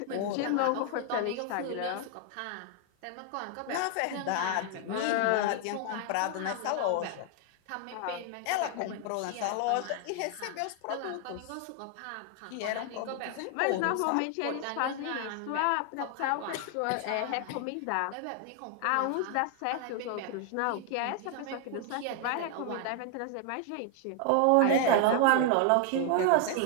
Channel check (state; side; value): different; both; correlation 0.00